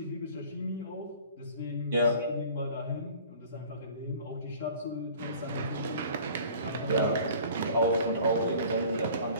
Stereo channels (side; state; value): both; inverted; correlation -0.47